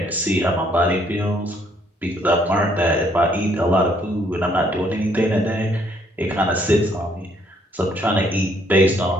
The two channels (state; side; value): normal; both; correlation 0.67